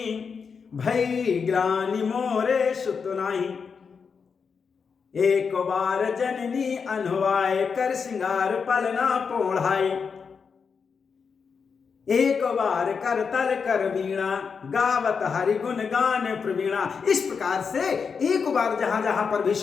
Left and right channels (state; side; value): quieter; right; 5.8 dB